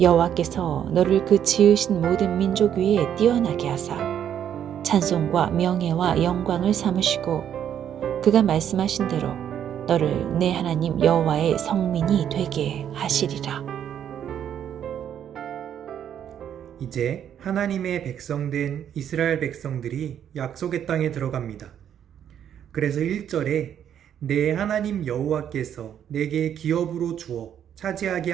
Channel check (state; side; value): quieter; left; 9.5 dB